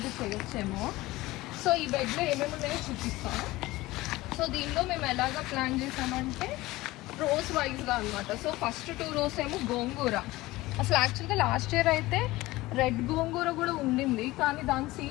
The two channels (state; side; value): quieter; right; 19.0 dB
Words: చేయొచ్చేమో. సో ఈ బెడ్లో ఏమేమి ఉన్నాయో చూపిస్తాను. సో దీనిలో మేము ఎలాగా ప్లాన్ చేసామంటే రోస్ వైజ్గా అనమాట. సో ఫస్ట్ 2 rows ఏమో గోంగూర. అసలు యాక్చువల్గా లాస్ట్ ఇయర్ అయితే రెడ్ గోంగూర కూడా ఉండింది, కానీ దాని